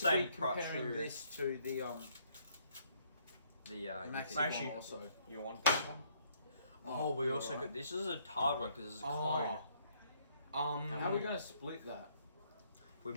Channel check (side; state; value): both; inverted; correlation -0.67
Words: be price, comparing sure. this to the The Maxi Actually- one also. You want this one? Oh, we Yeah, also right. got this is a hard one because it's a cone. How are we gonna split that? We